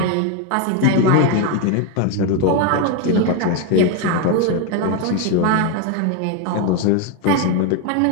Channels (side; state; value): both; different; correlation 0.01